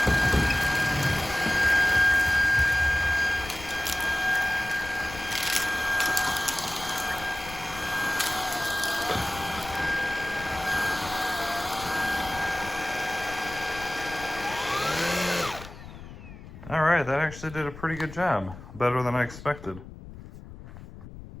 All right, that actually did a pretty good job. Better than I expected.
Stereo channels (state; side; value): noise; left; rumble, 15 dB below the sound